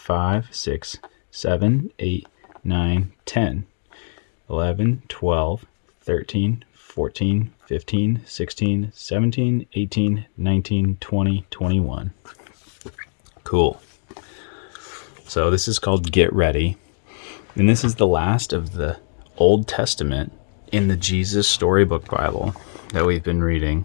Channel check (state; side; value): silent; right; digital silence